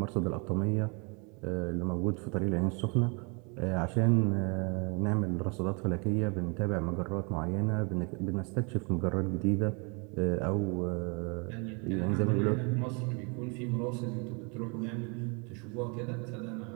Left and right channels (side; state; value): left; quieter; 33.0 dB